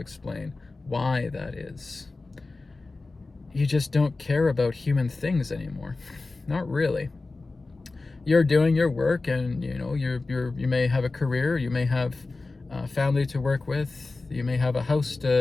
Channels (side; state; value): right; quieter; 3.5 dB